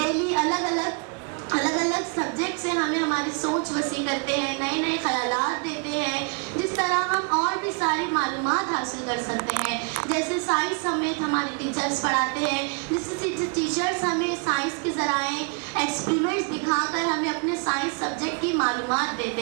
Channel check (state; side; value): quieter; left; 38.1 dB